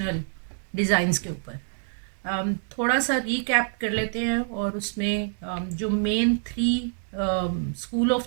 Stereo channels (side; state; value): left; silent; digital silence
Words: ڈیزائنز کے اوپر. تھوڑا سا ریکیپ کر لیتے ہیں اور اس میں جو مین 3 اسکول